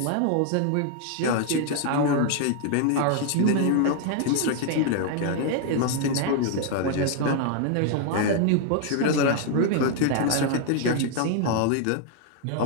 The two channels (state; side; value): different; both; correlation 0.00